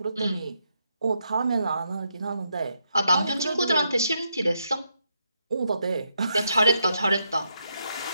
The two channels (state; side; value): inverted; both; correlation -0.80